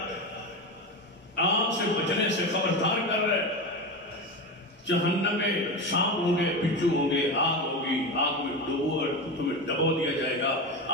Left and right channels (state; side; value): normal; both; correlation 0.21